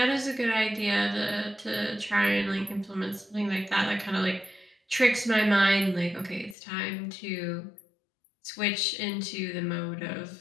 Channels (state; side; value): drops out; right; at 6.6 s